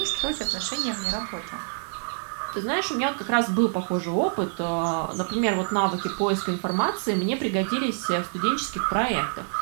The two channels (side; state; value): left; silent; 59 dB below the other